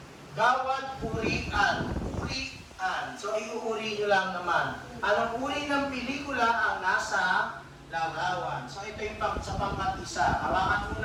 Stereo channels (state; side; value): identical; both; correlation 1.00